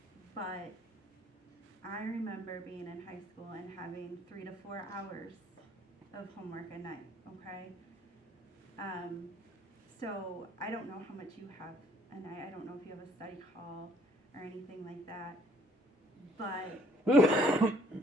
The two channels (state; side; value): normal; both; correlation 0.61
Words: but I remember being in high school and having 3 to 4 hours of homework a night, okay? So I don't know how much you have a night. I don't know if you have a study hall or anything like that. But,